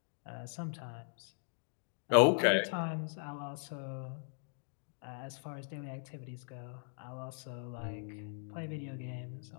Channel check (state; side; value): silent; right; digital silence